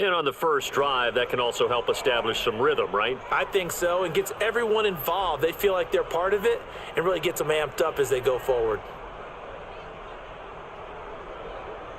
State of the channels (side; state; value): both; identical; correlation 1.00